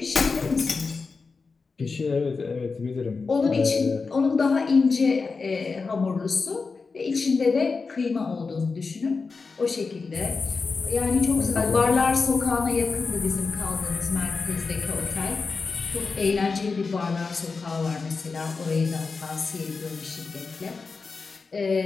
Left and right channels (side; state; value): right; quieter; 4.5 dB